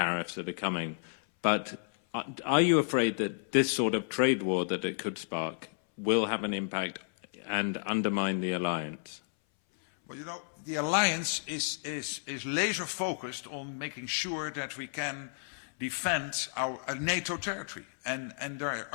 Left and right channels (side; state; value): right; silent; 56 dB below the other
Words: that are coming, but are you afraid that this sort of trade war that it could spark will have an impact and undermine the alliance? Well, you know, the alliance is laser focused on making sure that we can defend our NATO territory. And there